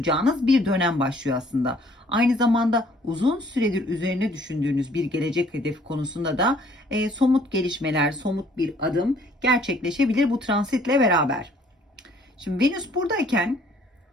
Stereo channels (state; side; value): normal; both; correlation 0.60